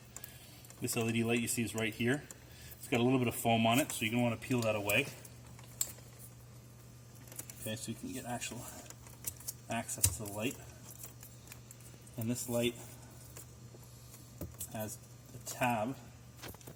This LED light you see is right here. It's got a little bit of foam on it, so you're going to want to peel that away. Okay, so you can get actual access to the light. And this light has a tab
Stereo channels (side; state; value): both; identical; correlation 1.00